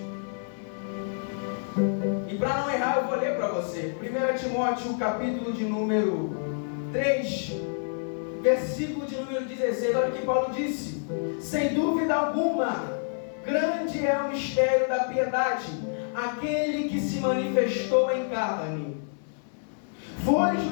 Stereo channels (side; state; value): right; silent; 59 dB below the other